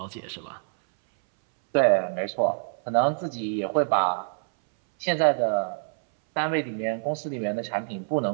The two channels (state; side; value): silent; left; 61 dB below the other